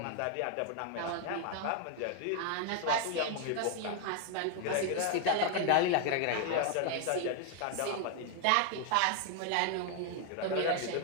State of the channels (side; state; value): both; different; correlation 0.00